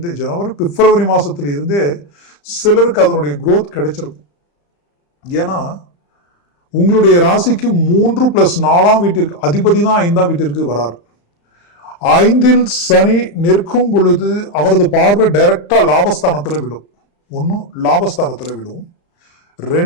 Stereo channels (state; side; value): late; right; 35 ms